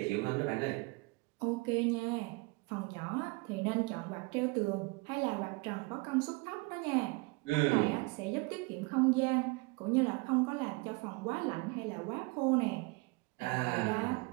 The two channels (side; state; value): left; quieter; 26.4 dB